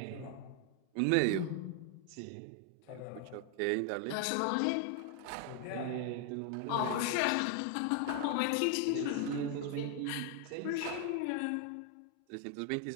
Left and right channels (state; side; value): different; both; correlation 0.00